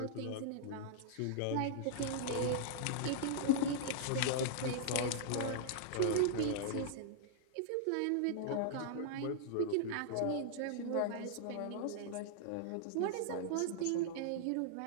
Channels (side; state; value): both; different; correlation -0.01